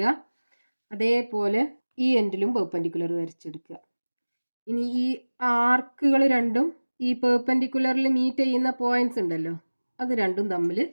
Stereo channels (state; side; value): inverted; both; correlation -1.00